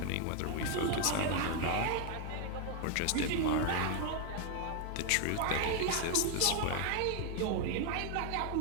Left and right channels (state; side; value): different; both; correlation 0.01